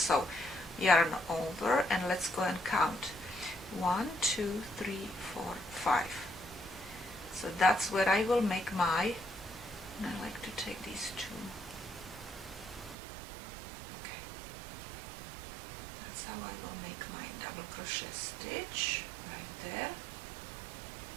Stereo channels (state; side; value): drops out; left; at 13.0 s